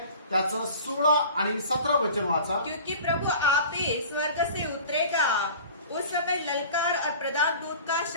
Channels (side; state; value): both; inverted; correlation -0.41